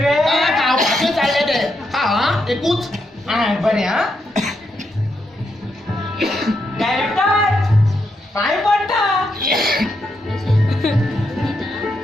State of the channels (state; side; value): normal; both; correlation 0.81